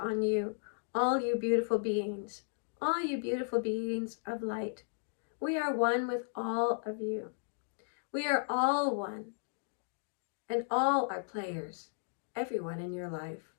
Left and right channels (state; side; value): silent; right; digital silence